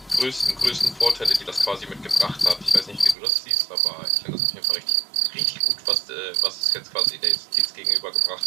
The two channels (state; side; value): drops out; left; at 3.2 s